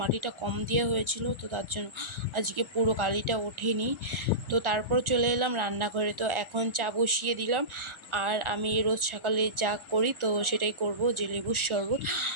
মাটিটা কম দেওয়া হয়েছিল, তো তার জন্য আজকে পুরো কালিটা ওঠেনি। তো তারপর চলে এলাম রান্নাঘরে। তো এখন চা বসিয়ে দিলাম। আর আমি রোজ সকালে যা করি তো সেটাই করব, যে লেবুর শরবত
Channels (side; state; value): left; late; 1.4 ms